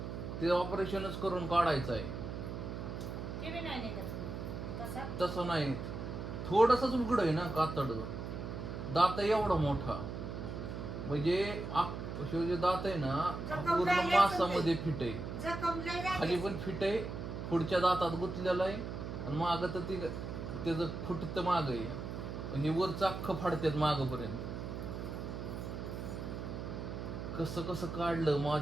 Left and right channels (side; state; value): right; noise; hum, 6 dB below the sound